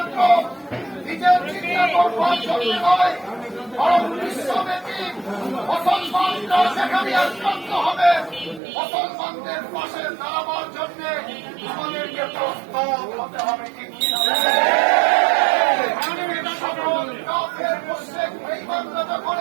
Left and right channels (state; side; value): drops out; left; at 8.6 s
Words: নিজের চিন্তা করবার জন্য নয়, বরং বিশ্বব্যাপী মুসলমানরা যেখানে আক্রান্ত হবে মুসলমানদের পাশে দাঁড়াবার জন্য আমাদেরকে প্রস্তুত হতে হবে। ঠিক কিনা? সকল কাফের মুশরিক বেঈমানরা যখন